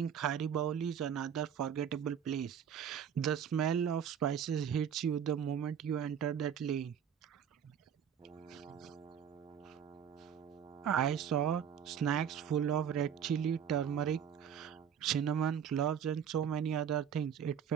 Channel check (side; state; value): left; quieter; 8.3 dB